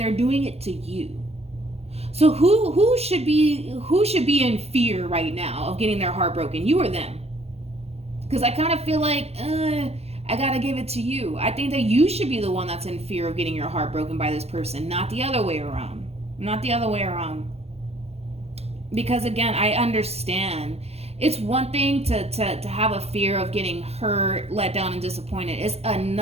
doing it to you. So who should be in fear right now of getting their heart broken? You or them? Because I kind of feel like, I gotta give it to you. I think that you should be the one that's in fear of getting your heart broken by this person, not the other way around. Not the other way around. Because again, I understand. It's one thing to have a fear of getting hurt, let down, and disappointed. It's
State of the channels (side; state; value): left; late; 0.30 ms